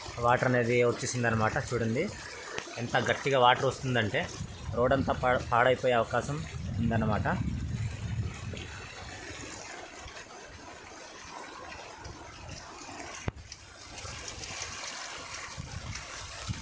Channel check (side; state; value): both; identical; correlation 1.00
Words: వాటర్ అనేది వచ్చేసిందనమాట. చూడండి ఎంత గట్టిగా వాటర్ వస్తుందంటే రోడ్ అంతా పాడైపోయే అవకాశం ఉందన్నమాట.